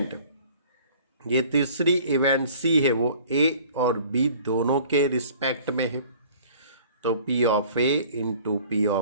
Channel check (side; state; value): both; inverted; correlation -0.50